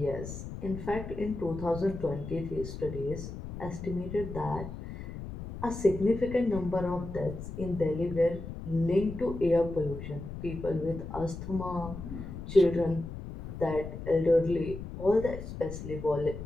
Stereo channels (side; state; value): left; noise; rumble, 9 dB below the sound